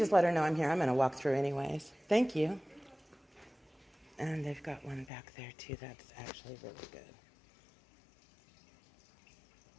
let her know I'm here, I'm going to walk through anyways. Thank you. And they've got one back there too that's actually really good.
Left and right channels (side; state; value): right; drops out; at 5.1 s